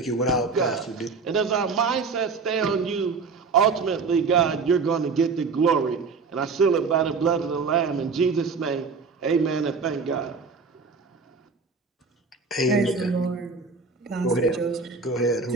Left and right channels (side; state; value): left; quieter; 4.7 dB